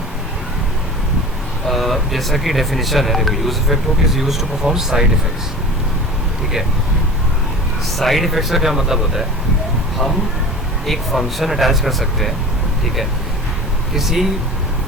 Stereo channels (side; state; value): both; normal; correlation 0.36